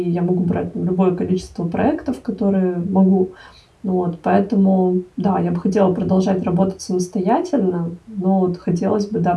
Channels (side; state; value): both; identical; correlation 1.00